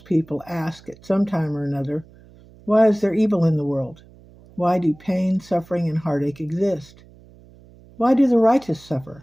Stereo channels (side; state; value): right; noise; hum, 24 dB below the sound